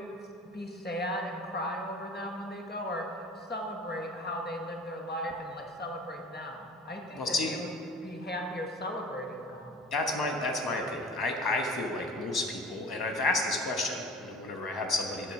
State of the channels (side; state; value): both; normal; correlation 0.42